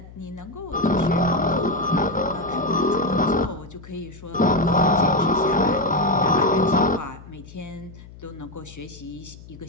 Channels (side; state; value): left; noise; hum, 18 dB below the sound